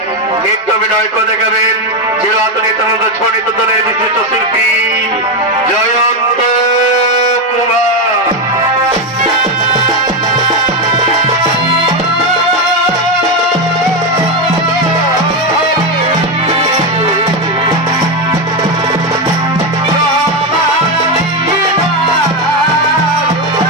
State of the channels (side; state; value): both; normal; correlation 0.09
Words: নৃত্য অভিনয় করে দেখাবেন চিরাচরিত নিত্যানন্দ ছড়িত দলের বিশিষ্ট শিল্পী জয়ন্ত কুমার।